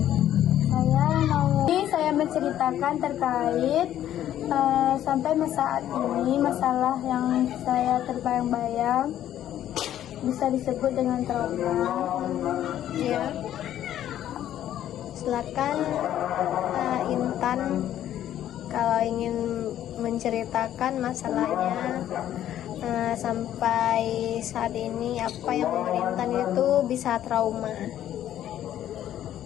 Saya menceritakan terkait sampai saat ini masalah yang saya terbayang-bayang bisa disebut dengan trauma. Ya. Silakan Intan kalau ingin menceritakan masalahnya sampai saat ini apa yang membuat Intan itu bisa trauma.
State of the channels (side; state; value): right; quieter; 11.7 dB